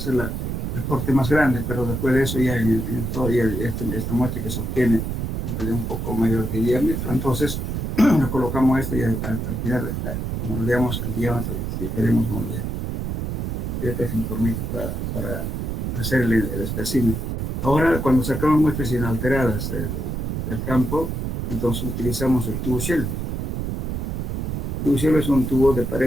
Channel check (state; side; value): noise; right; rumble, 2 dB below the sound